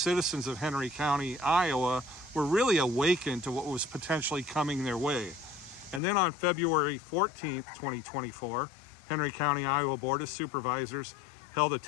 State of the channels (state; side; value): drops out; right; at 6.0 s